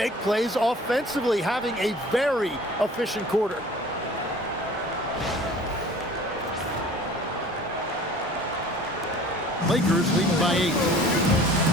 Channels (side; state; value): both; normal; correlation 0.47